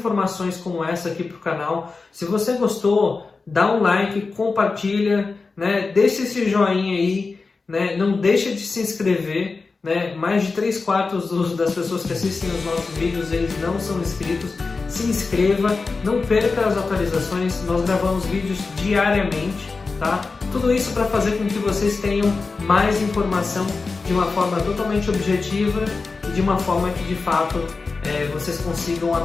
como essa aqui para o canal. Se você gostou, dá um like, compartilha, né? Deixa esse joinha aí, né? Não deixa de se inscrever. Né? Mais de 3/4 das pessoas que assistem os nossos vídeos, eles não são inscritos. Se inscreva, não perca as atualizações, nós gravamos vídeos diariamente, tá? Tudo isso para fazer com que vocês tenham mais informação de uma forma totalmente objetiva e de uma forma que de fato vocês consigam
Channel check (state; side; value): quieter; right; 4.2 dB